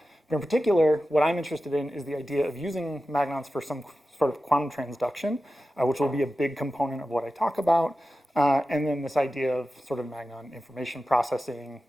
But in particular, what I'm interested in is the idea of using magnons for some sort of quantum transduction, which will be a big component of what I talk about. And then this idea of sort of magnon information processing,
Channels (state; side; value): normal; both; correlation 0.93